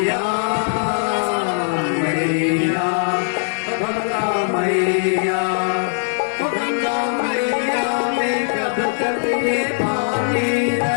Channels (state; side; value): silent; right; 65 dB below the other